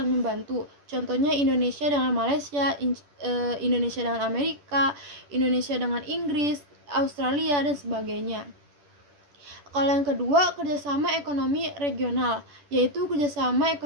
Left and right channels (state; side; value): late; left; 10 ms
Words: membantu. Contohnya Indonesia dengan Malaysia, Indonesia dengan Amerika, Indonesia dengan Inggris, Australia, dan sebagainya. Kalau yang kedua, kerjasama ekonomi regional, yaitu kerjasama